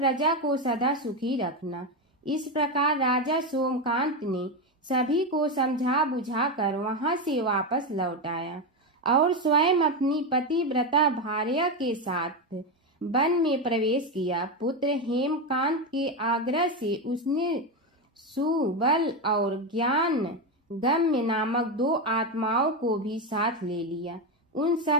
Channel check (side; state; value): both; normal; correlation 0.12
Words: को सदा सुखी रखना। इस प्रकार राजा सोमकांत ने सभी को समझा बुझाकर वहां से वापस लौट आया और स्वयं अपनी पतिव्रता भार्या के साथ वन में प्रवेश किया। पुत्र हेमकांत के आग्रह से उसने सुबल और ज्ञान गम्य नामक 2 आत्माओं को भी साथ ले लिया। उन